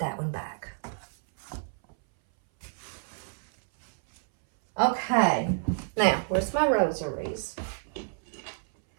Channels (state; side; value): silent; left; 59 dB below the other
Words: one back. Okay, now where's my rosaries?